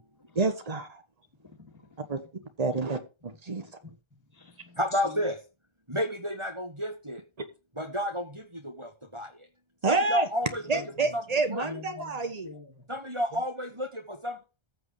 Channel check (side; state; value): left; late; 1.8 ms